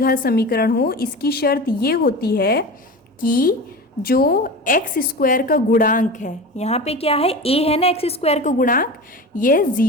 समीकरण हो, इसकी शर्त ये होती है कि जो x² का गुणांक है, यहाँ पे क्या है a है ना, x² का गुणांक, ये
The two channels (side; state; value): both; normal; correlation 0.30